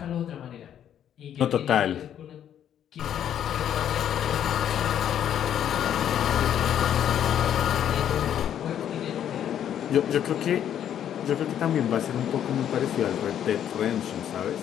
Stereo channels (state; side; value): quieter; right; 10.0 dB